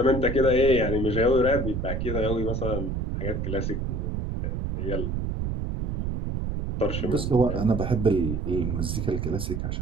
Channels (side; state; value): right; noise; rumble, 2 dB below the sound